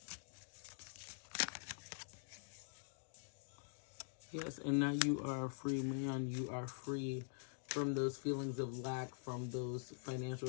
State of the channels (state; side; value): silent; right; digital silence